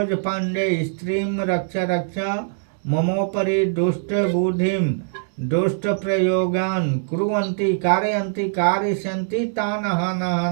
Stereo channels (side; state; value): left; silent; digital silence